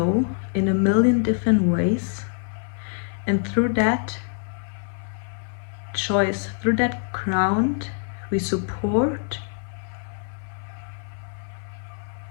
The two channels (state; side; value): silent; right; 56 dB below the other